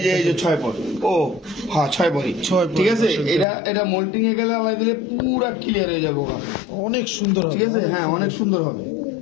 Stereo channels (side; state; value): right; drops out; at 3.5 s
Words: যে 6 পর। ও হ্যাঁ, 6 পরই। 6 পর, ঠিক আছে। দর্শক এটা মোল্টিং এ গেলে আলাই দিলে পুরা ক্লিয়ার হয়ে যাবে ওরা। অনেক সুন্দর হবে। ঠিক আছে, হ্যাঁ, অনেক সুন্দর হবে।